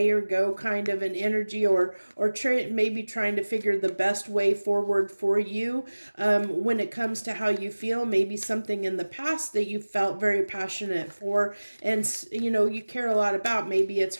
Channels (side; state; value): both; inverted; correlation -1.00